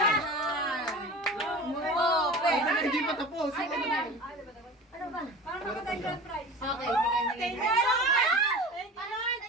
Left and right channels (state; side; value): normal; both; correlation 0.36